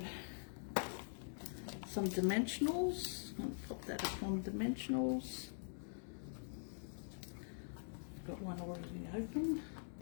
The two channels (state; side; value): silent; right; digital silence